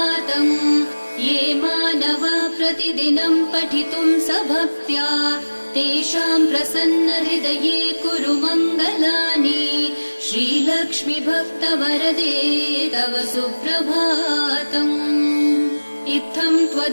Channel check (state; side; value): inverted; both; correlation -1.00